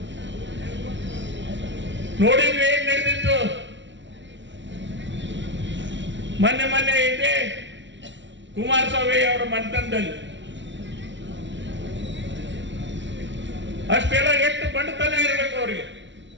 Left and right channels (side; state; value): left; late; 0.53 ms